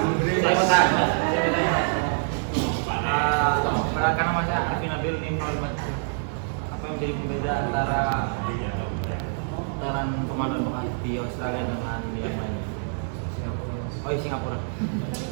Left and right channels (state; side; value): silent; left; 61 dB below the other